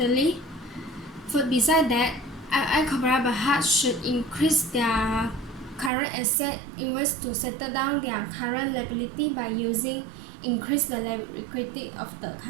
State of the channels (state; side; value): drops out; left; at 5.9 s